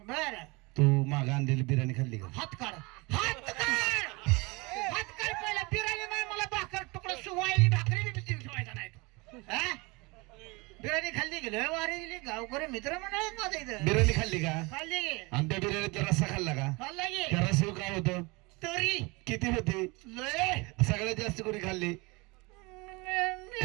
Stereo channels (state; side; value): quieter; left; 26.0 dB